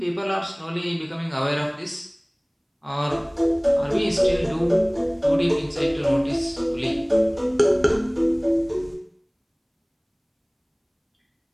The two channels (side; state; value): both; identical; correlation 1.00